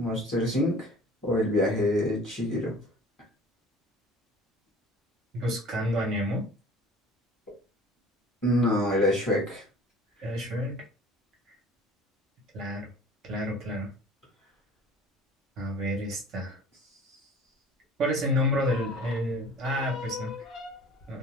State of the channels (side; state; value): both; normal; correlation 0.46